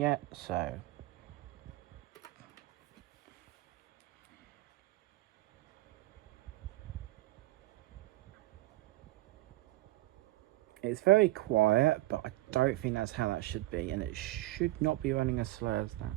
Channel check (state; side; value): quieter; left; 17.9 dB